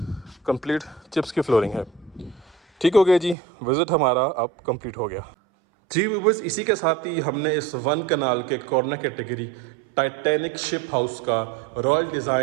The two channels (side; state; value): left; drops out; at 3.4 s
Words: कंप्लीट चिप्स की फ्लोरिंग है, ठीक हो गया जी। विज़िट हमारा अब कंप्लीट हो गया जी व्यूअर्स। इसी के साथ ही हमने इस वन कनाल के corner category Titanic ship house का रॉयल